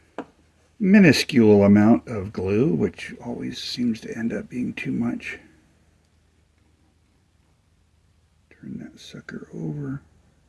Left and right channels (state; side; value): identical; both; correlation 1.00